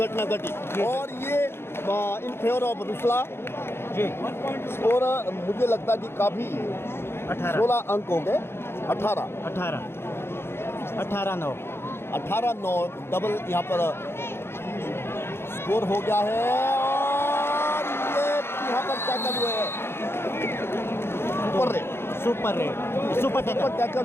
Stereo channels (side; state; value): right; late; 0.12 ms